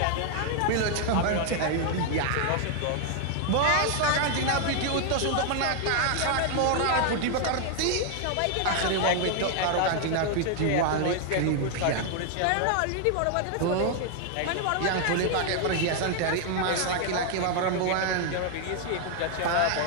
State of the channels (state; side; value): different; both; correlation 0.00